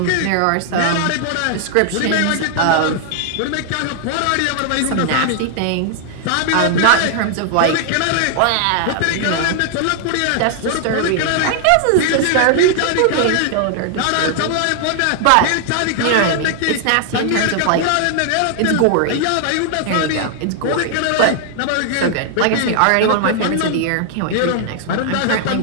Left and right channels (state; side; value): different; both; correlation 0.00